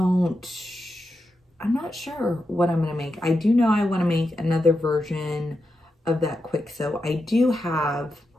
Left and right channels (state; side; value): normal; both; correlation 0.87